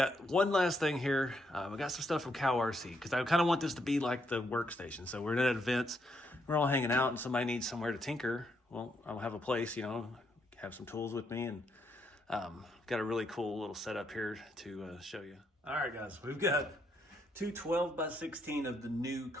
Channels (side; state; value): both; normal; correlation 0.76